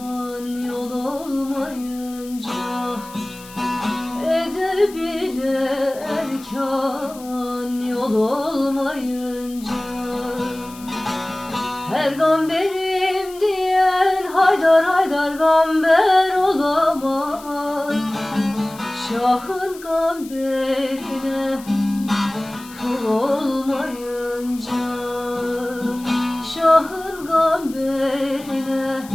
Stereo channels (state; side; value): noise; left; hiss, 19 dB below the sound